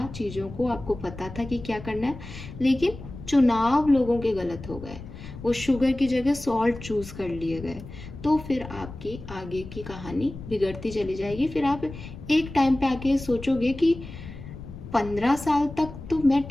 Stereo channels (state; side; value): noise; left; rumble, 13 dB below the sound